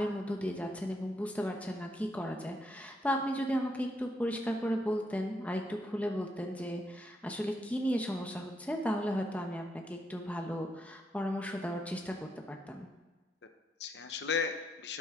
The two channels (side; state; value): both; normal; correlation 0.78